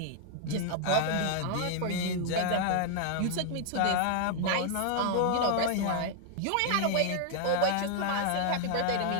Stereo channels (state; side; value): different; both; correlation 0.00